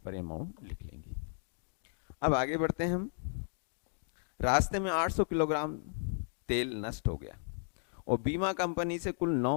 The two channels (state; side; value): silent; right; digital silence